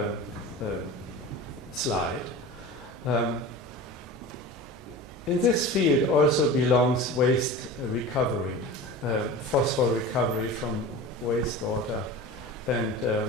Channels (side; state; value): both; normal; correlation 0.34